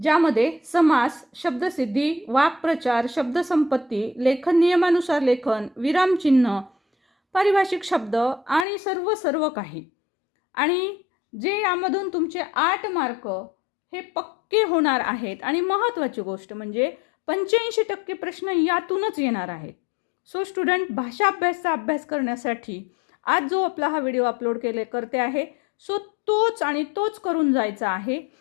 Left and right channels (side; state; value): right; drops out; at 8.7 s